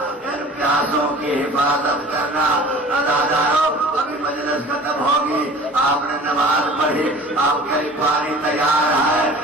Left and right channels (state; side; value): normal; both; correlation 0.44